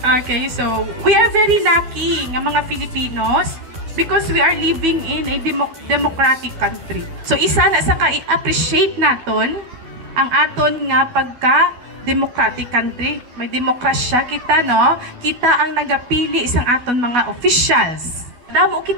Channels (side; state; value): left; late; 12 ms